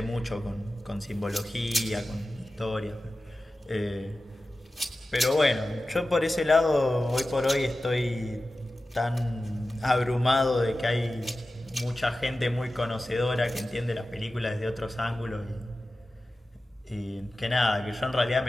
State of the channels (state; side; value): normal; both; correlation 0.94